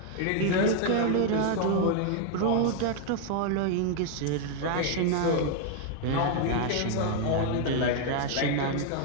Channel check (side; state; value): both; different; correlation 0.00